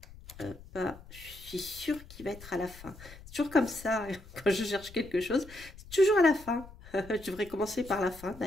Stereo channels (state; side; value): noise; left; rumble, 18 dB below the sound